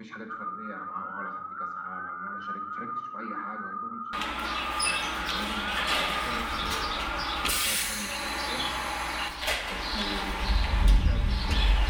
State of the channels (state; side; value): identical; both; correlation 1.00